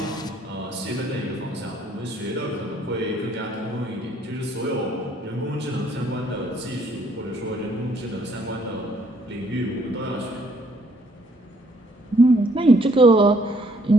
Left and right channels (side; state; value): both; normal; correlation 0.65